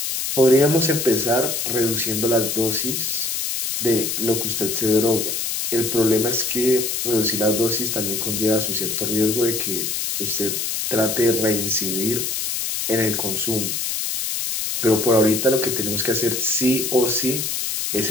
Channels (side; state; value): left; noise; hiss, 2 dB below the sound